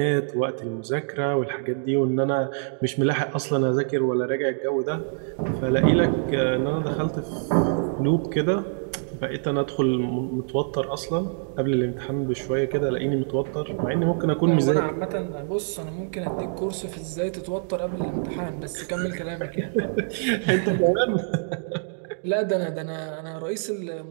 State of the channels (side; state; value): left; silent; digital silence